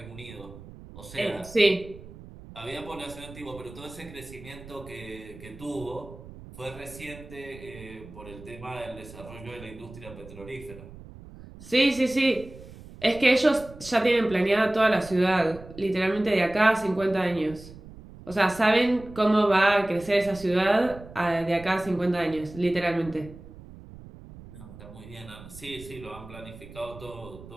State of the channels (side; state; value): right; noise; rumble, 17 dB below the sound